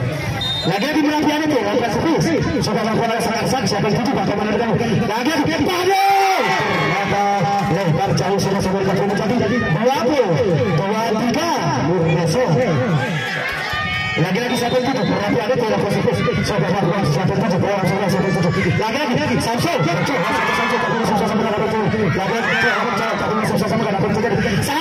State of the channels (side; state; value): both; identical; correlation 1.00